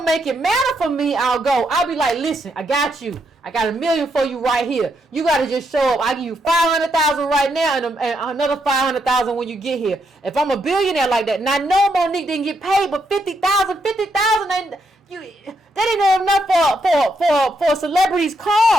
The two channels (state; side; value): normal; both; correlation 0.78